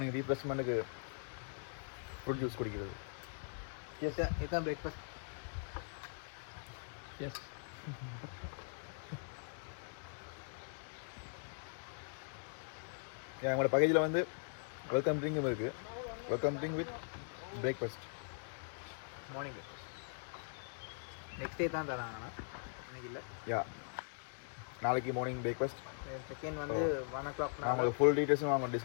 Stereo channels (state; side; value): silent; right; digital silence